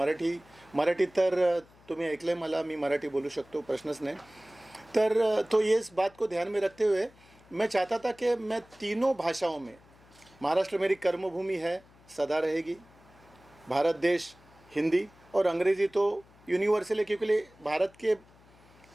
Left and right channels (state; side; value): noise; left; hum, 27 dB below the sound